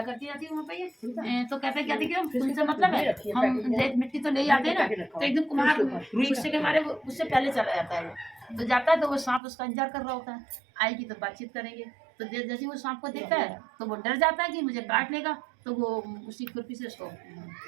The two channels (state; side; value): drops out; left; at 9.4 s